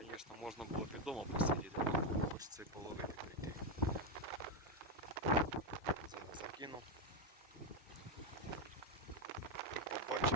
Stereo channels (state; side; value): normal; both; correlation 0.07